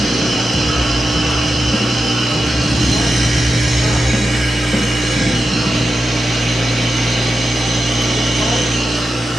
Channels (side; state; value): both; normal; correlation 0.90